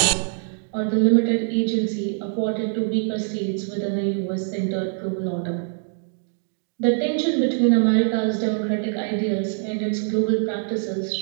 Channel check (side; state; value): left; silent; digital silence